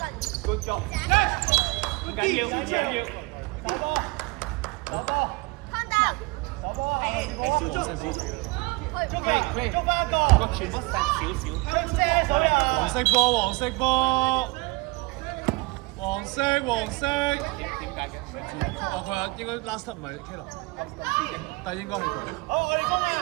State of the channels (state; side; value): quieter; left; 24.6 dB